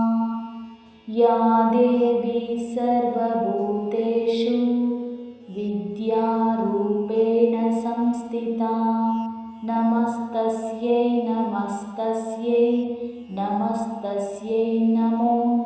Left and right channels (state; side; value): identical; both; correlation 1.00